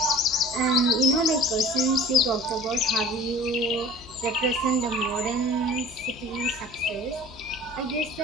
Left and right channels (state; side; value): normal; both; correlation 0.43